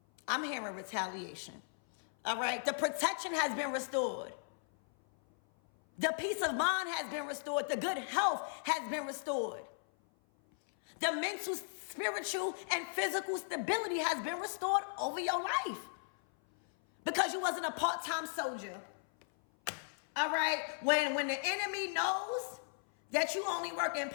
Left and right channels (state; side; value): silent; right; 54 dB below the other